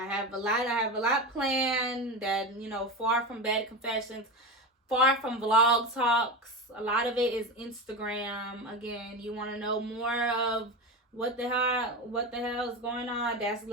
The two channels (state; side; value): normal; both; correlation 0.21